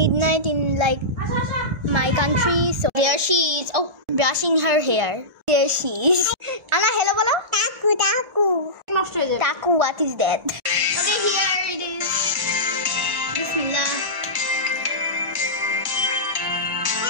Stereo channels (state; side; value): late; left; 1.4 ms